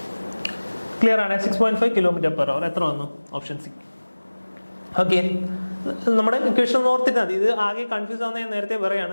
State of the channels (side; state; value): both; inverted; correlation -1.00